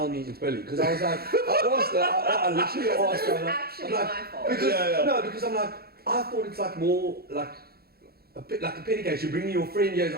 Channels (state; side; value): late; left; 0.45 ms